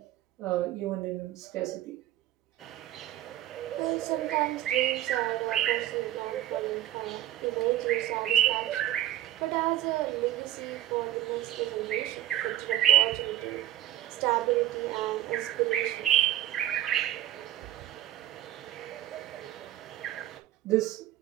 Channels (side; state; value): left; quieter; 13.5 dB